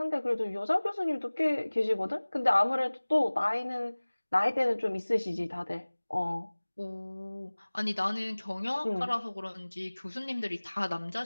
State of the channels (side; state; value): both; inverted; correlation -1.00